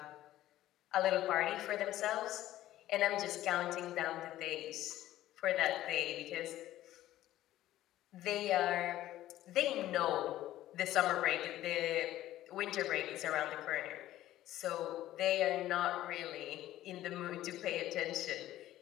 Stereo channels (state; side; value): quieter; right; 14.2 dB